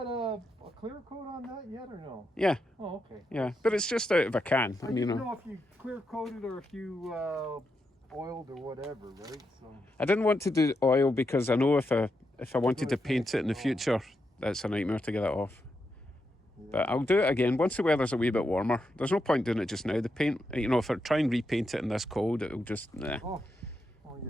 a clear coat on that yet or no? yeah, Oh, okay. yeah. But it's just out of a can, I and you didn't know. know if you clear coated or if you oiled or whatever, right? So I didn't want to do oil because I know if I wanted to paint it in the future, that's a nightmare to get it off. yeah. But I'll do it again once the weather's a wee bit warmer. There's no point doing it just now. The paint, you know, if I try and repaint it in this cold, it'll just nah. Oh yeah.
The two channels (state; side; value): normal; both; correlation 0.84